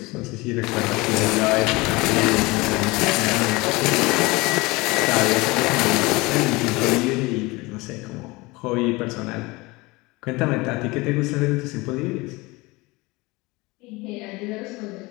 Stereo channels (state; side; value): quieter; right; 23.3 dB